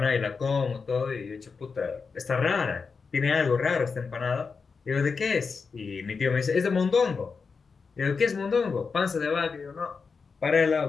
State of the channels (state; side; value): quieter; right; 5.1 dB